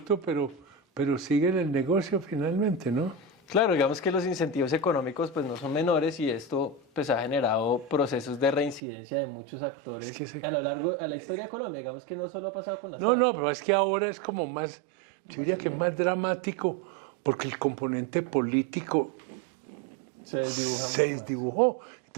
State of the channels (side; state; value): left; drops out; at 8.8 s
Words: pero sigue en el negocio finalmente, ¿no? Claro, digamos que los incentivos económicos pues no son menores, y esto pues ha generado procesos de reincidencia de muchos actores Sí, sí. a lo largo de la historia de Colombia. Digamos que no solo ha pasado con las No, FARC. no, pero es que ahora es como más, yo diría que es más dramático, porque el componente político Se desdibuja se mucho más. desdibujó.